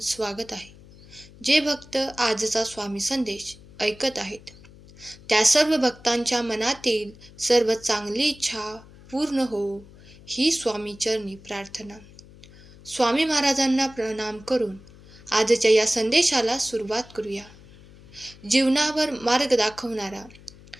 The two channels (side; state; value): left; noise; hum, 22 dB below the sound